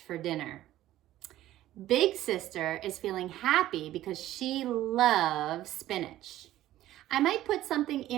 for dinner. Big sister is feeling happy because she loves spinach. I might put something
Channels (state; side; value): quieter; left; 14.1 dB